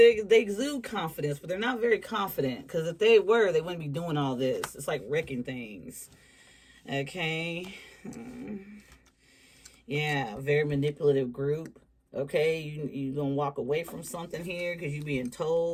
exude confidence, but they're not very confident. Because if they were, they wouldn't be doing all this. It's like wrecking things. Okay. Yeah, very manipulative group. Okay, you going to walk away from something here because you're being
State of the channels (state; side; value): identical; both; correlation 1.00